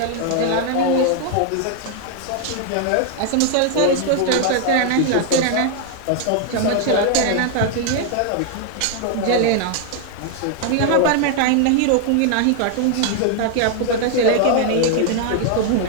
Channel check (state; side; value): different; both; correlation 0.00